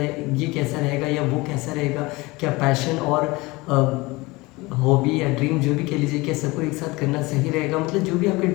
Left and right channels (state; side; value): quieter; right; 22.7 dB